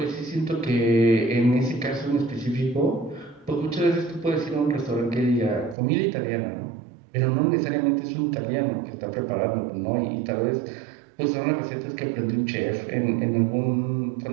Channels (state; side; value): drops out; left; at 5.8 s